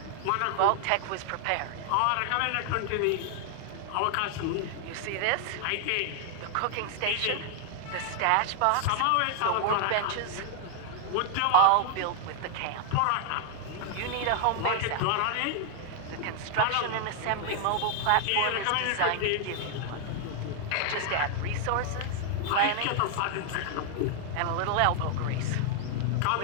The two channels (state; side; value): different; both; correlation 0.00